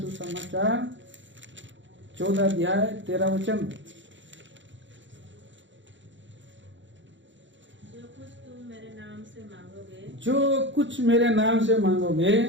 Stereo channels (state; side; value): late; left; 0.54 ms